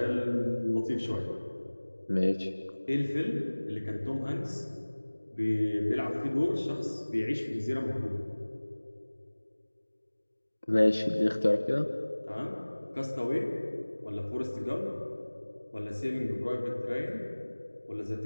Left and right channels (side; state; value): both; inverted; correlation -1.00